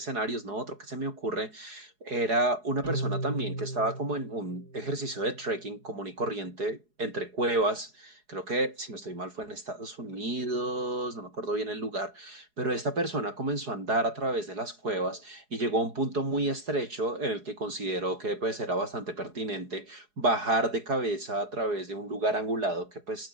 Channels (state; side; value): late; left; 4.8 ms